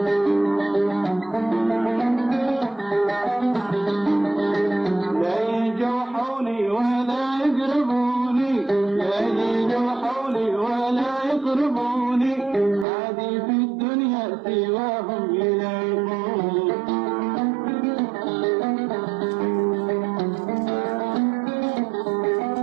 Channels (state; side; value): drops out; left; at 12.9 s